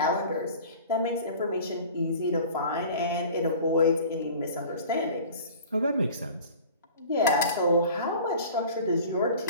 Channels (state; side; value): inverted; both; correlation -0.42